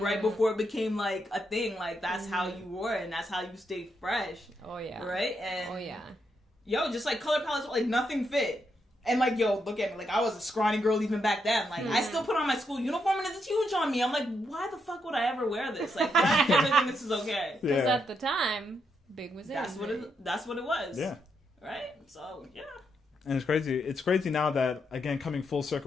before it became like a thing. Like that's how you wore it, and that's how you stayed fresh. Oh yeah. Right. And yo, just like color palettes, like nothing fit. And like, yo, look at me. Like, I was a scrawny girl even back then. Like, I still put on my school uniform and it's huge on me. I'm like, why the fuck would I ever wear this? Like, why do I think this is okay? Because at the time, big was in. That's what it was. Yeah. Right? So, yeah. And it's crazy. It's crazy now that, again, coming full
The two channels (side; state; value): both; normal; correlation 0.80